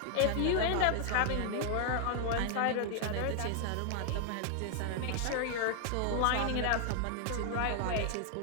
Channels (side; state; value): both; different; correlation 0.00